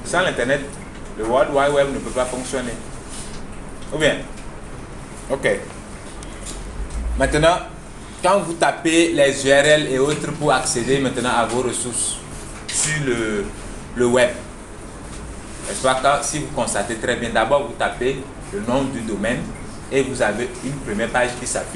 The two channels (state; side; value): identical; both; correlation 1.00